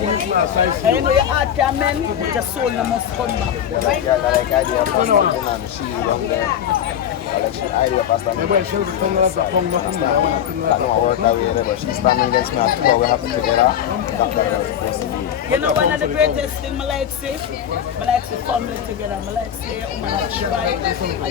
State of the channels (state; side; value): quieter; right; 9.5 dB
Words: And you know your heart can mend, but your soul must come back. You know one of the greatest things I like say family together. I like say your woman a try,